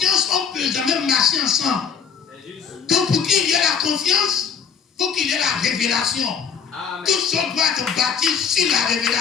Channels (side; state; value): right; quieter; 6.9 dB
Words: on ne peut jamais marcher ensemble. Donc pour qu'il y ait la confiance, il faut qu'il y ait la révélation. Tout ça doit être bâti sur la